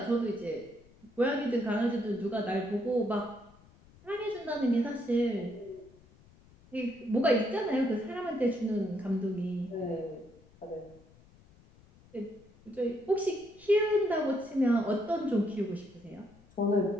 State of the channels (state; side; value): noise; left; rumble, 26 dB below the sound